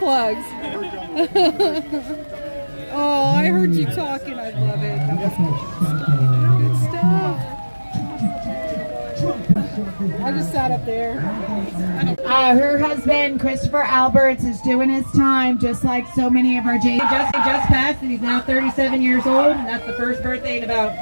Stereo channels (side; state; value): both; inverted; correlation -1.00